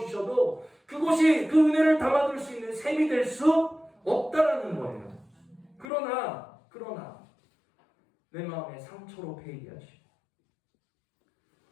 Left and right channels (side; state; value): right; drops out; at 5.9 s